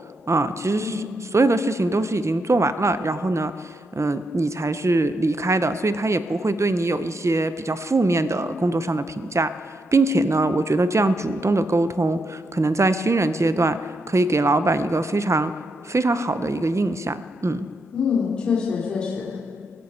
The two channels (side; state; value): both; normal; correlation 0.81